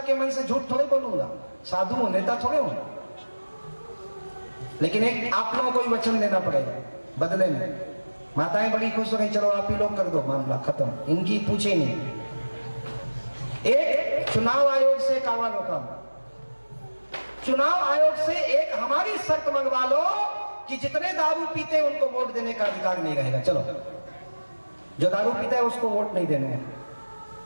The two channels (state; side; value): inverted; both; correlation -1.00